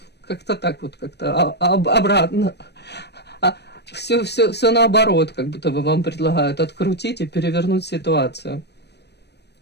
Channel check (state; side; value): late; right; 0.49 ms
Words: как-то так вот, как-то обратно. Все наоборот, как будто бы вам предлагают открутить и перевернуть ситуацию.